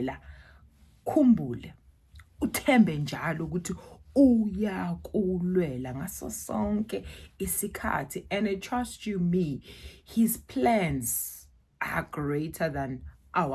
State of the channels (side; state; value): both; identical; correlation 1.00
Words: khumbule, uthembe njalo ukuthi uyakulwela ngaso sonke isikhathi. And I trust you me, his plans are greater than